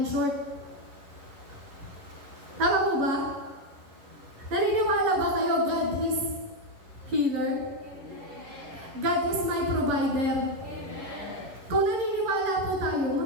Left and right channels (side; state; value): left; late; 11 ms